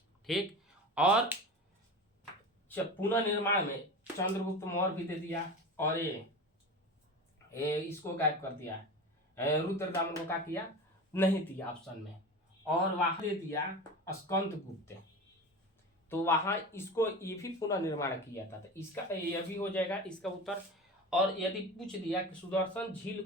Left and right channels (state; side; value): normal; both; correlation 0.30